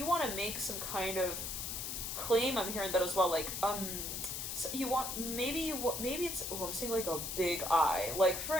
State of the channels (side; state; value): left; noise; hiss, 4 dB below the sound